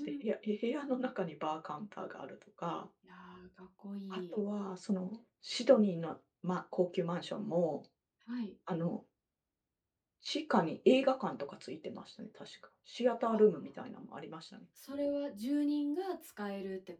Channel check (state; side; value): identical; both; correlation 1.00